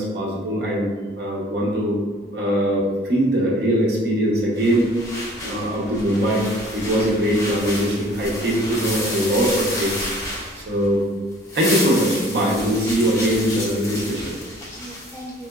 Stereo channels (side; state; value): both; normal; correlation 0.52